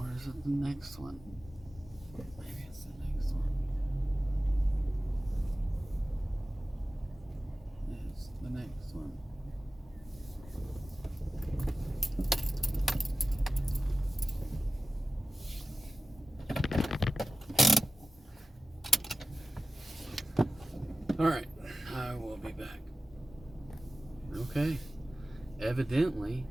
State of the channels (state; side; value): normal; both; correlation 0.95